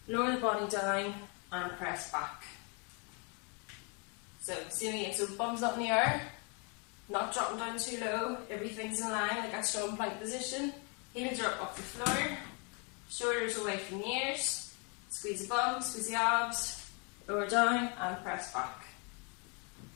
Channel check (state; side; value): quieter; right; 34.8 dB